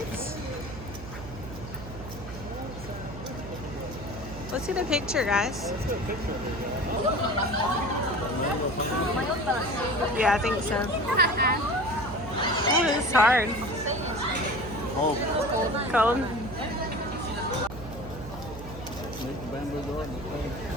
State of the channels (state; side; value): noise; right; hum, 12 dB below the sound